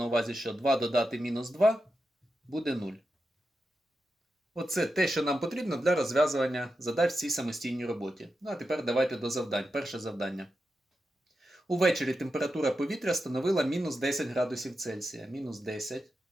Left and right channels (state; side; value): normal; both; correlation 0.89